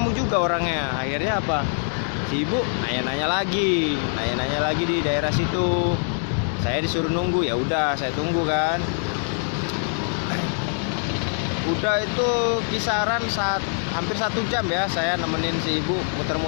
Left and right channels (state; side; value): silent; right; 62 dB below the other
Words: juga orangnya. Akhirnya apa, si ibu nanya-nanya lagi di daerah situ. Saya disuruh nunggu, ya udah saya tunggu kan. Udah itu kisaran saat hampir 1 jam ya saya nemenin si ibu